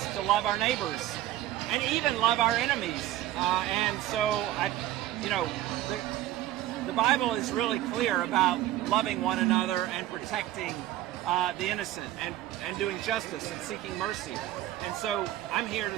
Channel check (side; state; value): left; quieter; 14.3 dB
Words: to love our neighbors and even love our enemies. And so, the Bible is really clear about loving one another and protecting the innocent and doing justice and seeking mercy. And so I'm here